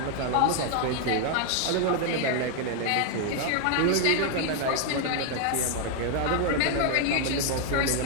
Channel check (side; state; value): both; different; correlation 0.00